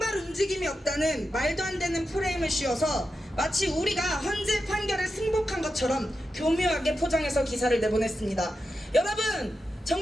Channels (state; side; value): normal; both; correlation 0.89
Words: 움직임이 없다는 말도 안 되는 프레임을 씌워서 마치 우리가 헌재 판결에 승복한 것처럼 교묘하게 포장해서 기사를 내보냈습니다. 여러분,